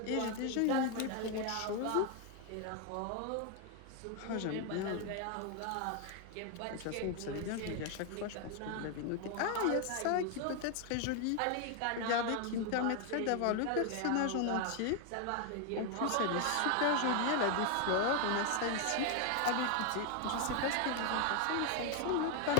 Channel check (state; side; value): different; both; correlation 0.01